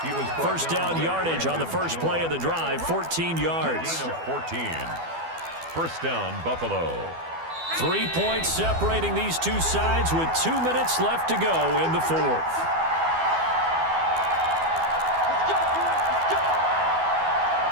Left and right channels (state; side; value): late; left; 12 ms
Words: down yardage on the first play of the drive, 14 yards. 14. 1st down, Buffalo. 3 points separating these two sides with 2 minutes left to go in the fourth.